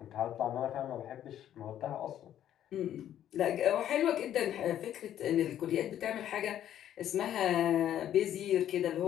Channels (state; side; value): quieter; right; 11.1 dB